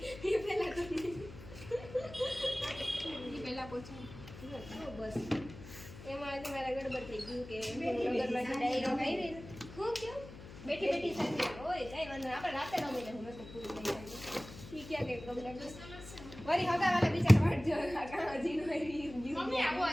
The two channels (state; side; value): noise; left; hum, 15 dB below the sound